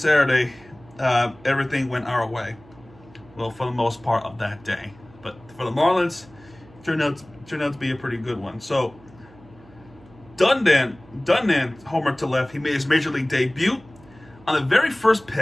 everything went our way. Well, for the most part of that day. But for the Marlins, turned out to be a pretty good one. So, Dundan homer to left. He made his major league debut on the very first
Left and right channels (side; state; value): right; noise; hum, 25 dB below the sound